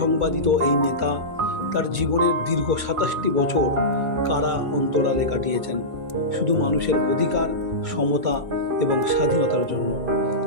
এই নেতা তার জীবনের দীর্ঘ 27টি বছর কারা অন্তরালে কাটিয়েছেন শুধু মানুষের অধিকার, সমতা এবং স্বাধীনতার জন্য।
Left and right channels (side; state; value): left; late; 2.2 ms